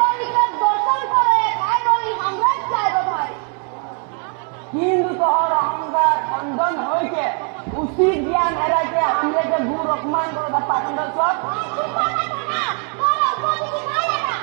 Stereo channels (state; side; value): quieter; left; 39.2 dB